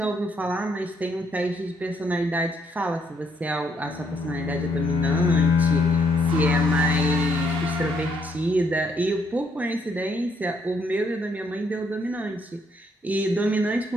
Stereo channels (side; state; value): both; normal; correlation 0.70